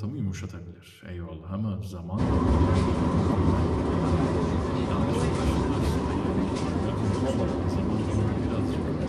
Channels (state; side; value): identical; both; correlation 1.00